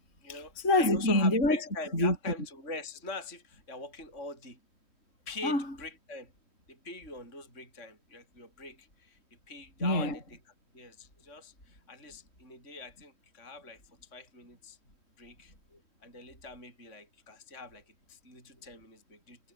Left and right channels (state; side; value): late; right; 3.1 ms